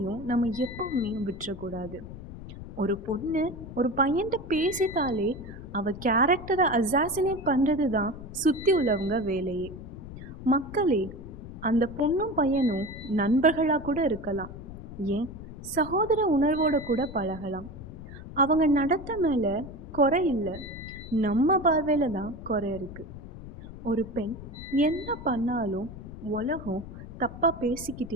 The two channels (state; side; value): noise; left; rumble, 13 dB below the sound